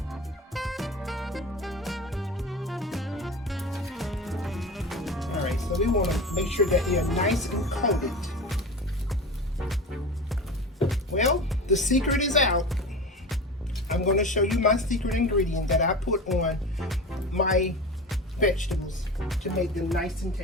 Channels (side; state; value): both; normal; correlation 0.31